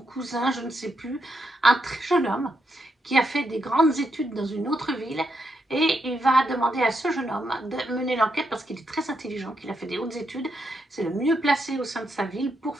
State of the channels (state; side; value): normal; both; correlation 0.81